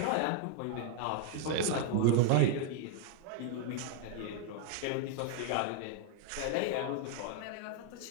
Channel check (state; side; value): different; both; correlation 0.00